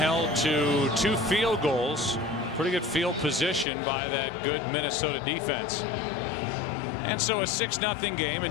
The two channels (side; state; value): right; drops out; at 3.7 s